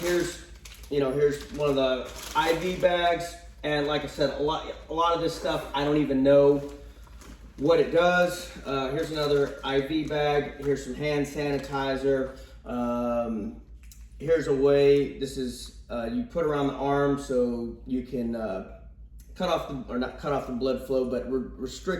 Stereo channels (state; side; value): identical; both; correlation 1.00